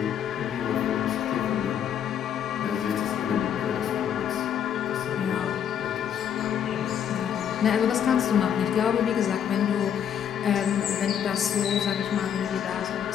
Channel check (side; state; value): right; quieter; 8.9 dB